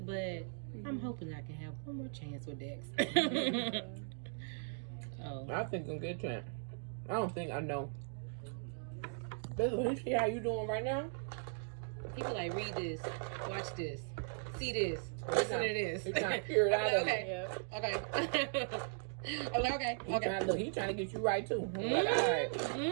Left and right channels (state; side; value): silent; left; digital silence